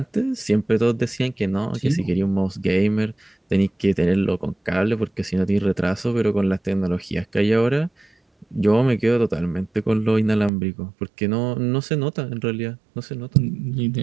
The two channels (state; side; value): drops out; left; at 10.5 s